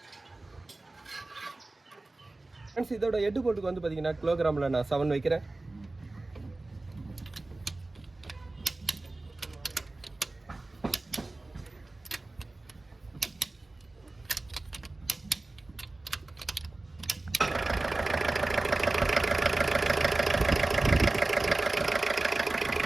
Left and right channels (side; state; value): left; quieter; 3.0 dB